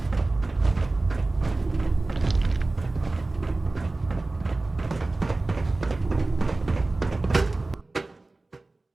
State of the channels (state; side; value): quieter; left; 3.1 dB